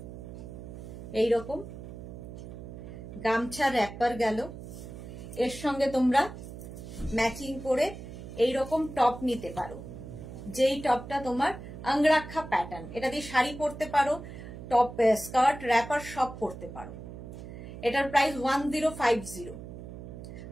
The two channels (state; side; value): noise; right; hum, 12 dB below the sound